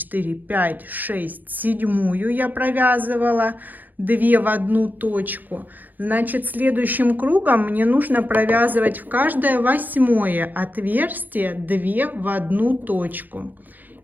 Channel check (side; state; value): left; late; 0.085 ms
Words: 5, 6, седьмую я провязывала 2 в одну точку. Значит, следующим кругом мне нужно провязывать в каждое 8-е отверстие 2 в одну точку.